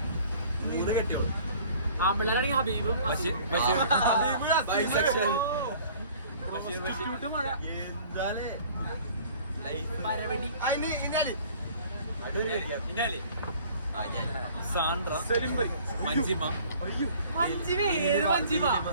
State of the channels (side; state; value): both; inverted; correlation -0.51